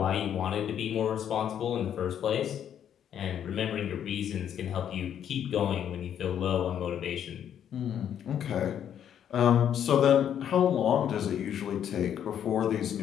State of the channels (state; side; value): quieter; right; 9.4 dB